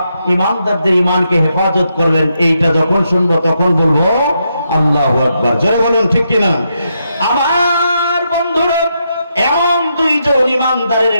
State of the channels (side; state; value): both; inverted; correlation -0.82